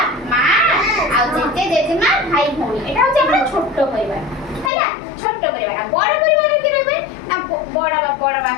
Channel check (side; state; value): right; drops out; at 4.7 s